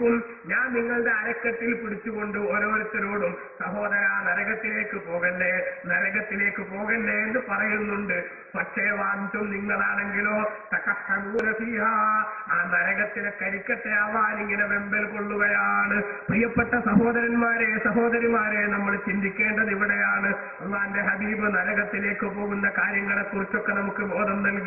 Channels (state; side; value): identical; both; correlation 1.00